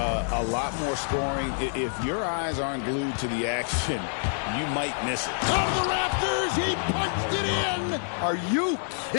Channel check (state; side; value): silent; right; 60 dB below the other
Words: lot more scoring. If your eyes aren't glued to the action, you might miss it. Out of the rafters, he punched it in. Are you